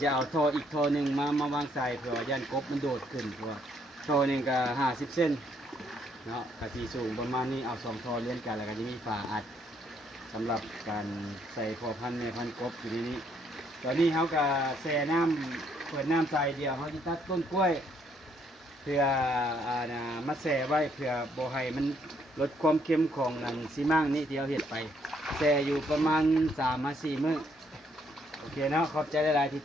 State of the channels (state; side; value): normal; both; correlation 0.70